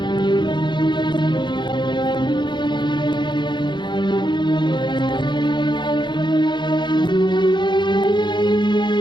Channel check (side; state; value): right; late; 0.22 ms